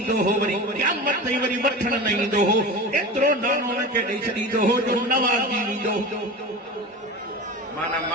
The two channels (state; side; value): normal; both; correlation 0.30